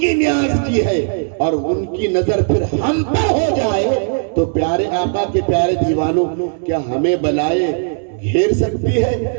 نیاز کی ہے اور ان کی نظر پھر ہم پر ہو جائے تو پیارے آقا کے پیارے دیوانوں، کیا ہمیں بلائے گھیر سکتی ہے؟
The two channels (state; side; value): silent; left; 68 dB below the other